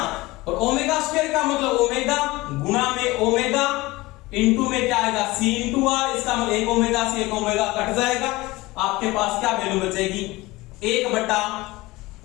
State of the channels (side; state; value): right; quieter; 20.5 dB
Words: और ओमेगा स्क्वायर का मतलब ओमेगा गुणा में ओमेगा इनटू में क्या आएगा C इनटू R, इसका मतलब 1 ओमेगा से 1 ओमेगा कट जाएगा, आपके पास क्या वैल्यू बचेगी 1 बटा